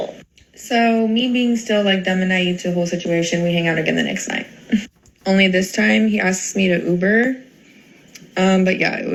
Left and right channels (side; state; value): both; identical; correlation 1.00